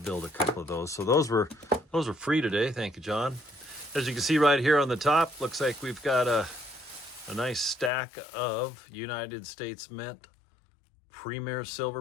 a couple of those. So those were free today. Thank you, John. As you can see right here on the top, looks like we've got a nice stack of United States Mint Premier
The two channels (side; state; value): right; drops out; at 7.9 s